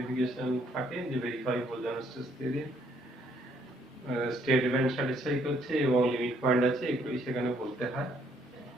থাকে যে verify Bolzano Weierstrass theorem, state event satisfy করছে এবং লিমিট পয়েন্ট আছে, এগুলোই সেখানে বলতে হয়।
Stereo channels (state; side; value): normal; both; correlation 0.67